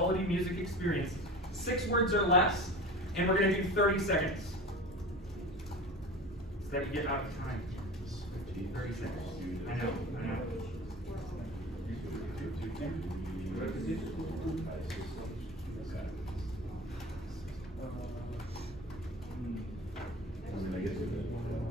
music experience? 6 words or less, and we're going to do 30 seconds. So that you get out of time. 30 seconds. I know.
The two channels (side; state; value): both; normal; correlation 0.35